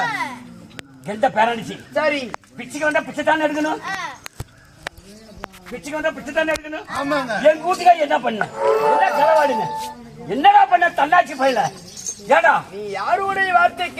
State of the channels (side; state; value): both; identical; correlation 1.00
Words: எந்த பேரணிச்சு சரி பிச்சுக்கு வந்தா பிச்சை தானே எடுக்கணும் பிச்சுக்கு வந்தா பிச்சை தானே எடுக்கணும் என் கூட்டுக்காரி என்ன பண்ண என்ன செலவாடுங்க என்னடா பண்ண தன்னாட்சி பயில ஏடா நீ யாருடைய வார்த்தை